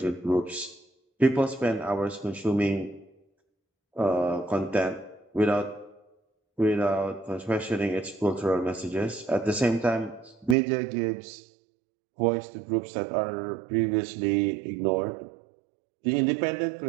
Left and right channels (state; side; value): drops out; left; at 10.6 s